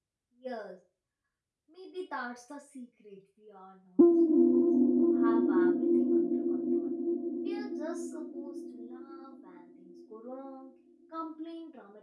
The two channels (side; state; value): both; identical; correlation 1.00